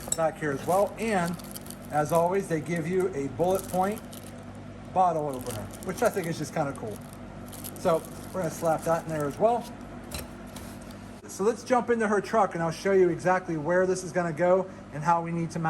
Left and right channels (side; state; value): both; identical; correlation 1.00